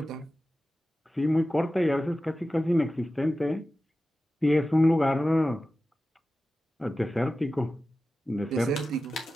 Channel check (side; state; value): both; normal; correlation 0.94